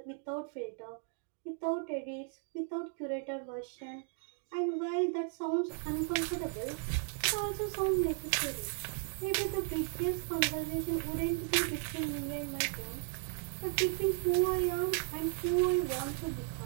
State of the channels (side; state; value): left; silent; 54 dB below the other